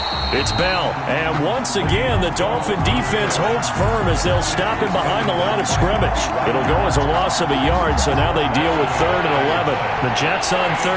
It's Bell. And once again, the Dolphin defense holds firm as they'll stop him behind the line of scrimmage. It'll go as a loss of a yard, so now they deal with 3rd and 11. The Jets on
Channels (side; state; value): both; identical; correlation 1.00